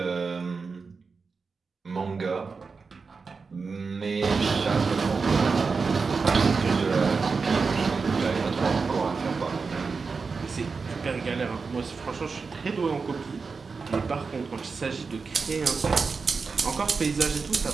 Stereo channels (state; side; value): quieter; left; 4.8 dB